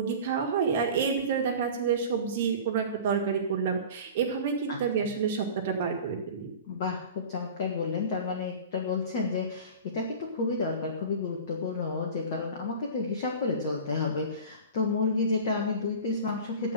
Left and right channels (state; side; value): inverted; both; correlation -0.37